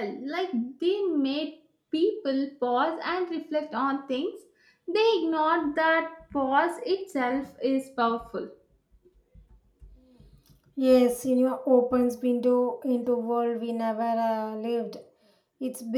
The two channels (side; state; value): both; identical; correlation 1.00